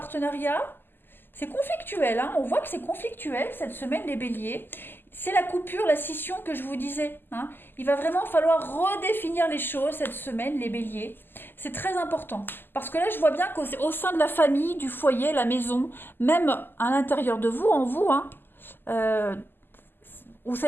C'est conflictuel, hein. On voit que c'est conflictuel cette semaine, les béliers. C'est la coupure, la scission que je vous disais. Hein. Il va vraiment falloir redéfinir les choses cette semaine, les béliers. C'est très important. Parce que là, je vois bien qu'au sein de la famille, du foyer, la maison, même à l'intérieur de vous, en vous, hein, euh, vous ne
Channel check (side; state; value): right; late; 0.096 ms